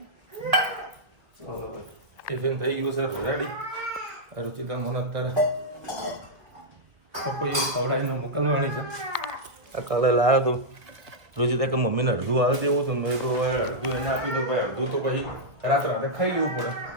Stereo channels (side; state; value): left; late; 2.0 ms